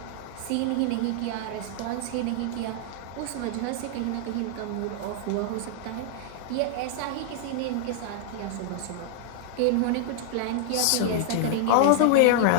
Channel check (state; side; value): different; both; correlation 0.00